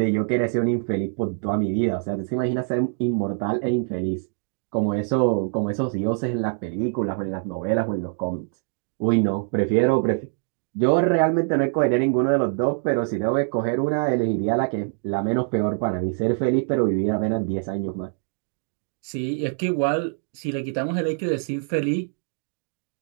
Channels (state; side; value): silent; left; 62 dB below the other